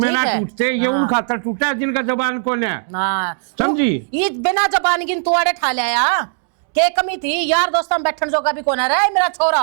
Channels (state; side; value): silent; left; digital silence